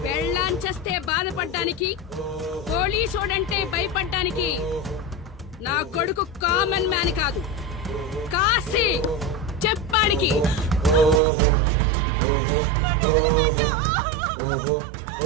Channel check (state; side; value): drops out; left; at 11.2 s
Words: పెళ్ళాంచేస్తే బాధపడ్డానికి, పోలీసోడంటే భయపడ్డానికి నా కొడుకు కామన్ మ్యాన్ కాదు, కాశీ చెప్పాడికి.